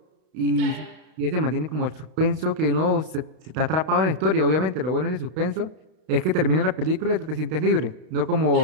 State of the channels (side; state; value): left; late; 32 ms